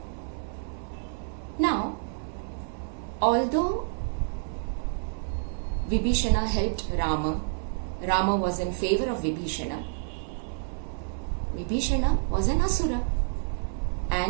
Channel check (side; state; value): left; silent; 59 dB below the other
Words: Now, although Vibhishana helped Rama, Rama was in favor of Vibhishana. Vibhishana was an asura,